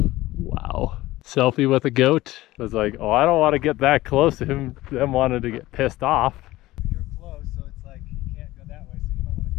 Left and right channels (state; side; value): quieter; right; 17.4 dB